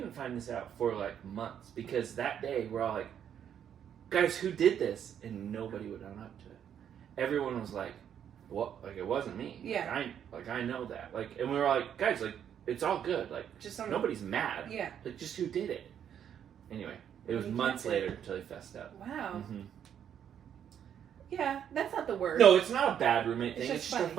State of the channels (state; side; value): quieter; left; 9.1 dB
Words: find this out for, like, months, because that day we're all like, "Guys, who did this?" And nobody would own up to it. Everyone was like, "What? Like, it wasn't me." Yeah. I know that. Like, and we were like, "Guys, like, it's all good. Like, just nobody's mad. Yeah. Like, just who did it?" Anyway, it was months later until he fessed up. Wow. Mm-hmm. Yeah, that's not the word. No, it's not a bad roommate thing. It's just funny. a